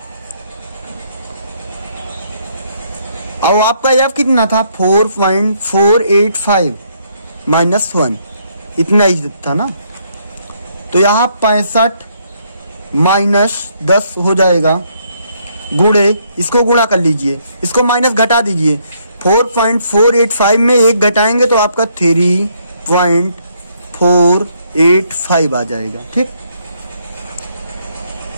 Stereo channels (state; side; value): inverted; both; correlation -0.71